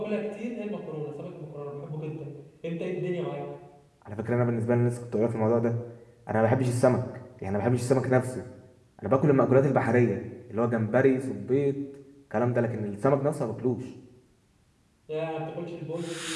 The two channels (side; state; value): both; identical; correlation 1.00